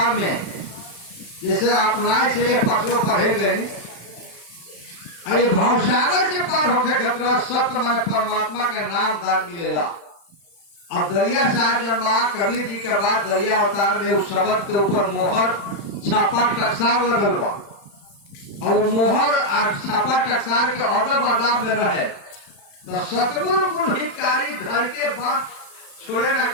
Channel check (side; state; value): right; late; 35 ms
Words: में जैसे अपनाए से पशु पढ़े गए, अरे भावसागर से पार होके खतरा सत्य मन परमात्मा के नाम दान मिलेगा। अब दरिया साहब जन्मा कबीर जी के बाद दरिया अवतार में उस शब्द के ऊपर मोहर छापा टकसार लगल बा, और मोहर छापा टकसार के अदब अदाब में रहे तो सतगुरु गुरु हितकारी धर के बात छोड़े न